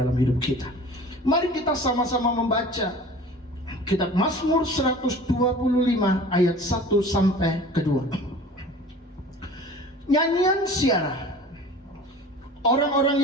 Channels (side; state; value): both; normal; correlation 0.42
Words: dalam hidup kita. Mari kita sama-sama membaca kitab Mazmur 125 ayat 1 sampai ke 2. Nyanyian Syarah. Orang-orang